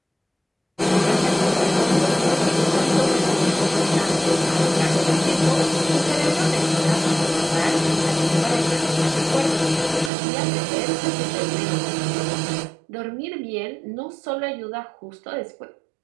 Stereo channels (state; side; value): drops out; left; at 10.1 s